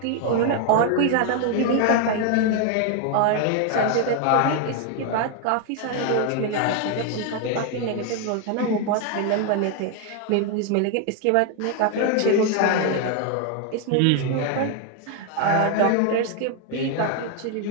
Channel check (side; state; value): both; different; correlation 0.01